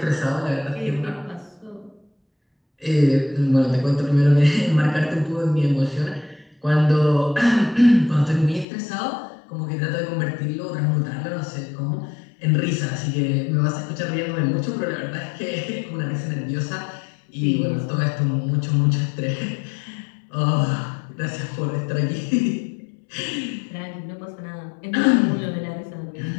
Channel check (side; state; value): right; drops out; at 8.7 s